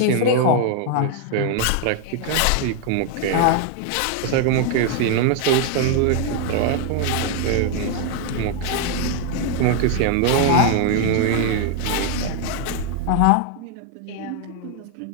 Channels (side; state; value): both; different; correlation 0.00